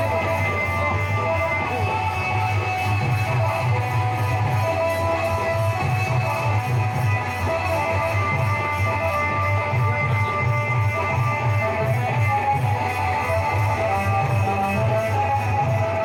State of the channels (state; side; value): identical; both; correlation 1.00